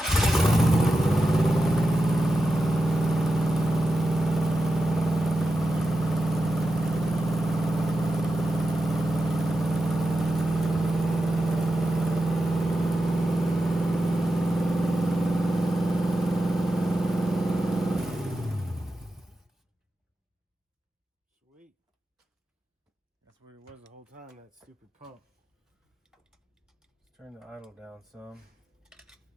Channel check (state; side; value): normal; both; correlation 0.90